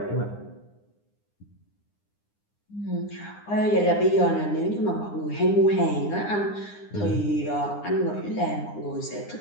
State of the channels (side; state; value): right; late; 9.8 ms